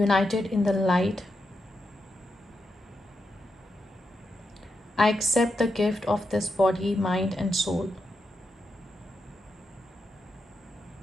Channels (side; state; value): both; normal; correlation 0.85